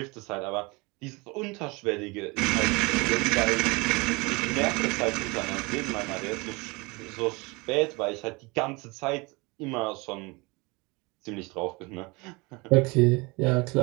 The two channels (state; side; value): quieter; left; 26.3 dB